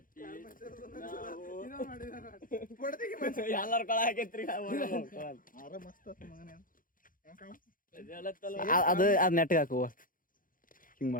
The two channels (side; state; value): right; late; 0.40 ms